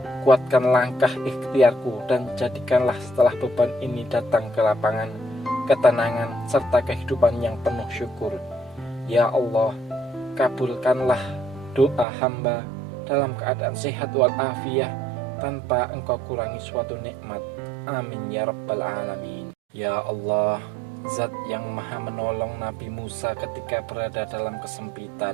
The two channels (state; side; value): drops out; left; at 12.1 s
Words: kuatkan langkah ikhtiarku, dan jadikanlah setelah beban ini datang ke lapangan, ketenangan, serta kehidupan yang penuh syukur. Ya Allah, kabulkanlah doa hamba dalam keadaan sehat walafiat, tanpa engkau kurangi suatu nikmat. Amin ya rabbal alamin. Ya Allah, Zat yang maha menolong Nabi Musa ketika berada dalam